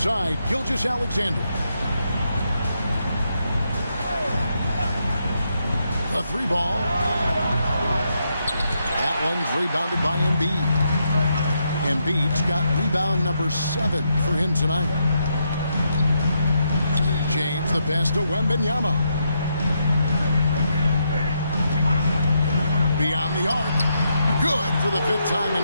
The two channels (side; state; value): both; inverted; correlation -0.80